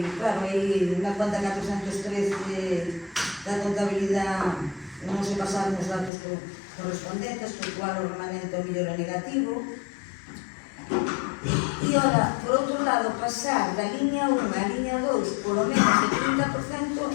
claro, aí na cuenta 413 da contabilidade non se pasaron os datos correspondentes, porque igual o remanente ao mellor é negativo. E ora, por outro lado, pasar da liña 1 á liña 2 polo menos de 30%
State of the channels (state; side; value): drops out; right; at 6.1 s